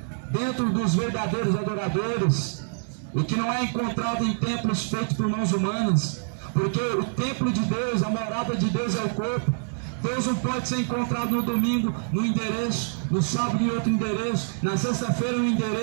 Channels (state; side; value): silent; left; digital silence